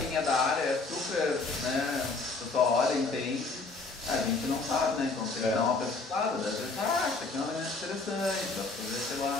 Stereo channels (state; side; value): quieter; right; 3.8 dB